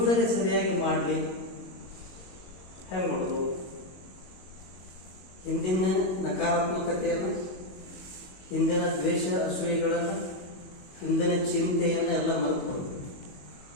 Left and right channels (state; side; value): late; right; 22 ms